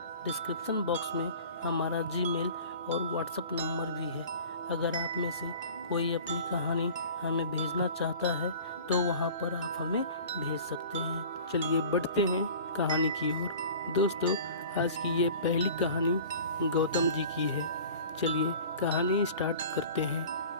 डिस्क्रिप्शन बॉक्स में हमारा जीमेल और व्हाट्सएप नंबर भी है। अगर आप में से कोई अपनी कहानी हमें भेजना चाहता है तो वहाँ पर आप हमें भेज सकते हैं। चलिए बढ़ते हैं कहानी की ओर। दोस्तों, आज की ये पहली कहानी गौतम जी की है। चलिए कहानी स्टार्ट करते हैं।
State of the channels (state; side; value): inverted; both; correlation -0.42